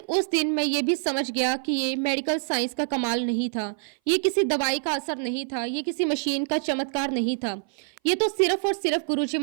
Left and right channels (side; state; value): left; silent; 58 dB below the other